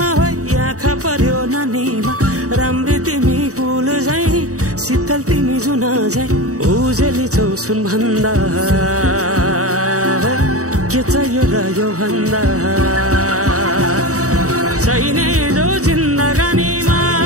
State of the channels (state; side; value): late; left; 0.66 ms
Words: हो आँखा पर्यो नानीमा राम्री तिमी फूल झै शीतल तिमी जुन झै उजेली छौ सुन भन्दा के चाहियो र यो भन्दा चाहिने जो जिन्दगानीमा